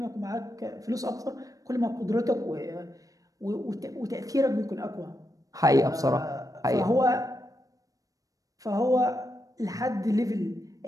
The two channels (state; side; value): late; left; 0.17 ms